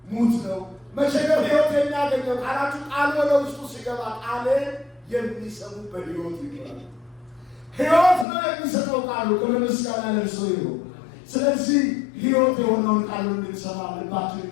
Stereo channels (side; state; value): right; drops out; at 8.2 s